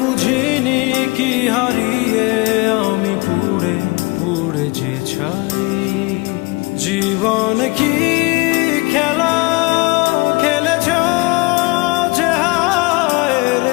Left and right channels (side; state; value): right; quieter; 25.6 dB